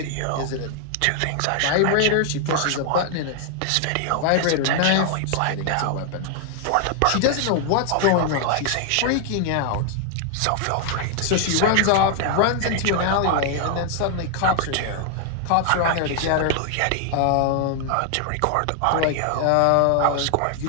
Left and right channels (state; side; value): different; both; correlation 0.00